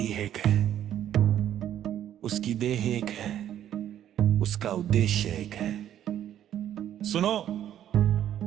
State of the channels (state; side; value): quieter; left; 10.9 dB